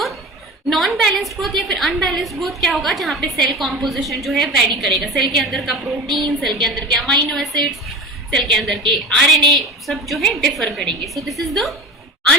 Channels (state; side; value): normal; both; correlation 0.33